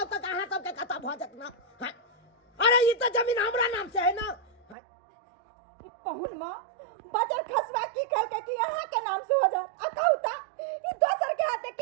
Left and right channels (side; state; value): left; drops out; at 4.8 s